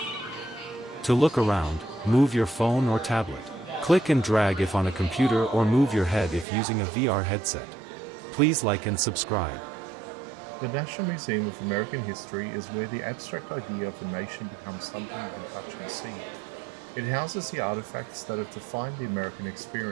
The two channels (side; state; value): left; drops out; at 6.5 s